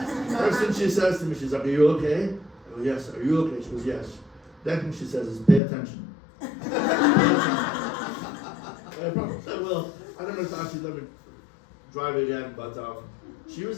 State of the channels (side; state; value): right; drops out; at 5.6 s